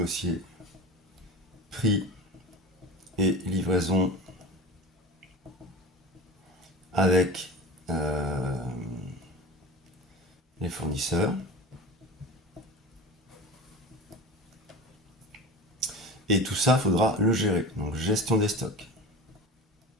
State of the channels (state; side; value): normal; both; correlation 0.32